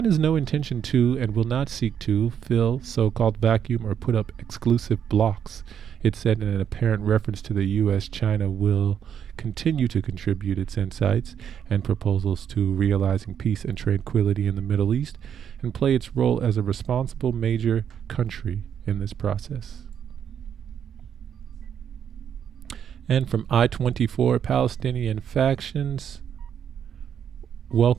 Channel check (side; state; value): left; quieter; 8.5 dB